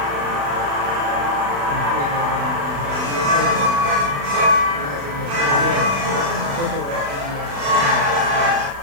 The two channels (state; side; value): late; left; 35 ms